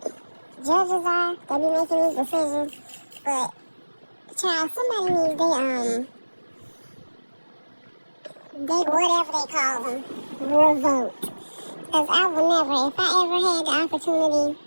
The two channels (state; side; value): inverted; both; correlation -1.00